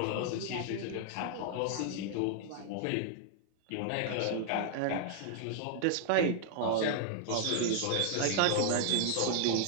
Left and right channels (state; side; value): different; both; correlation 0.00